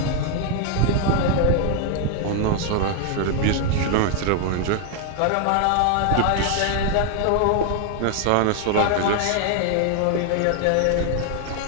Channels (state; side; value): different; both; correlation 0.00